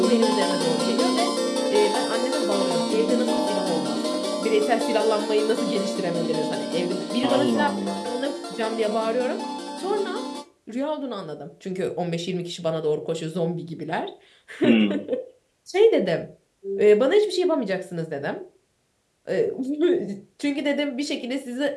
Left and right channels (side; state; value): both; identical; correlation 1.00